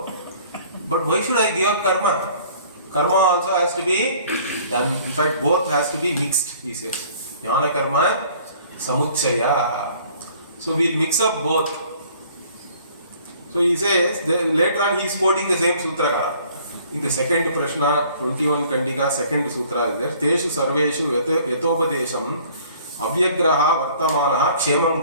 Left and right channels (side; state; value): both; inverted; correlation -0.54